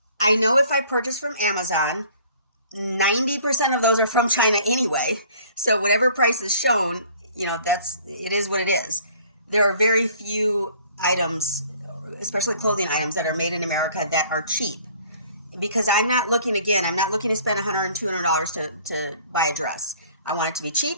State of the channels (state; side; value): inverted; both; correlation -0.54